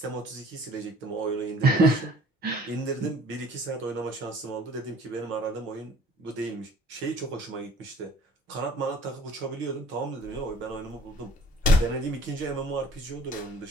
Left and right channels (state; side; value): normal; both; correlation 0.52